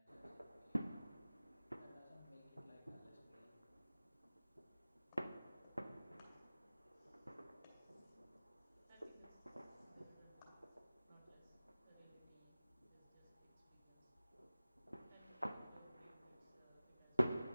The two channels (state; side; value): inverted; both; correlation -0.98